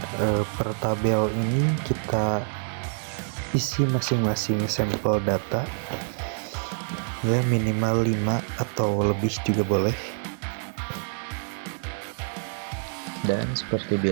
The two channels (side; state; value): left; silent; digital silence